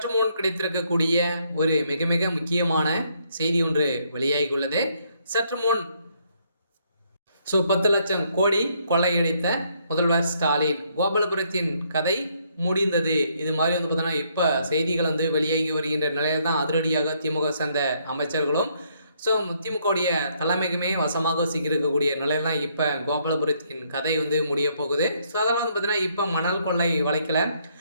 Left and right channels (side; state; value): both; inverted; correlation -0.71